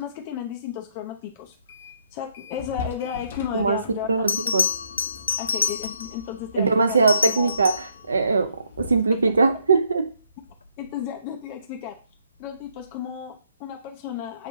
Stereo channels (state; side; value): inverted; both; correlation -0.71